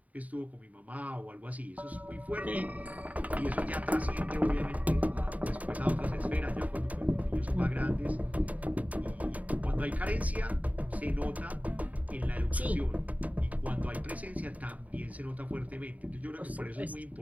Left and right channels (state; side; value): late; left; 0.071 ms